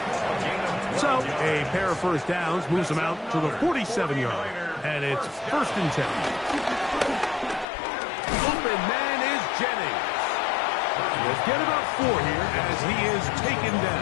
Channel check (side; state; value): right; drops out; at 7.7 s